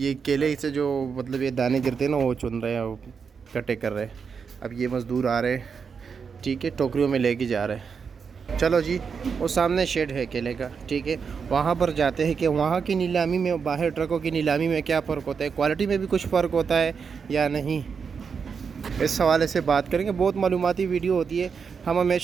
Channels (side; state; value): left; quieter; 6.0 dB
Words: केले से जो मतलब ये दाने गिरते हैं ना, वो चुन रहे हैं, वो कटे कर रहे हैं। अब ये मज़दूर आ रहे हैं, ठीक है, टोकरियों में लेके जा रहे हैं। चलो जी, वो सामने शेड है केले का, ठीक है, वहाँ पर जाते हैं कि वहाँ की नीलामी में बाहर ट्रकों की नीलामी में क्या फ़र्क होता है, क्वालिटी में भी कुछ फ़र्क होता है या नहीं, इस हवाले से बात करेंगे। बहुत मालूमाती वीडियो होती है। हम